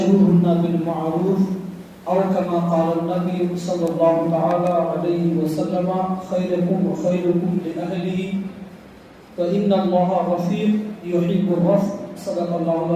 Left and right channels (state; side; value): identical; both; correlation 1.00